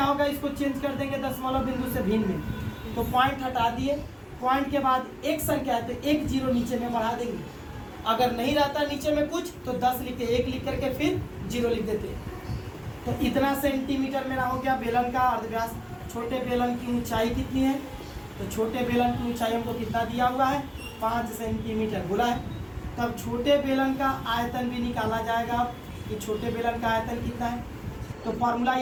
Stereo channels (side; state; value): both; identical; correlation 1.00